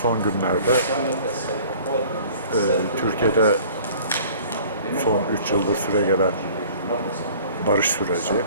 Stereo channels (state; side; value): inverted; both; correlation -0.49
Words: son günlerde Türkiye'de son 3 yıldır süre gelen barış süreci